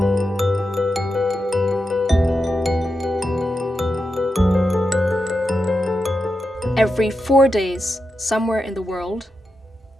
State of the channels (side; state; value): both; normal; correlation 0.88